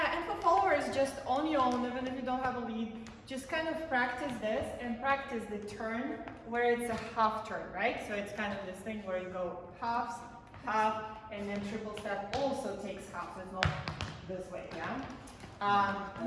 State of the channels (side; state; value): both; identical; correlation 1.00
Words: and for followers, just on your own, even if you don't have a lead, just kind of practice this and practice the turn where it's a half turn, right? So it's kind of this thing where you go halves, half, and then triple step also takes half, so it's not this way, yeah?